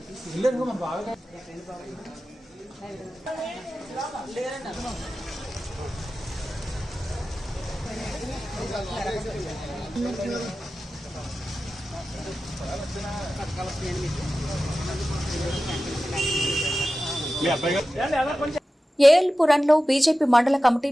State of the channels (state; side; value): normal; both; correlation 0.94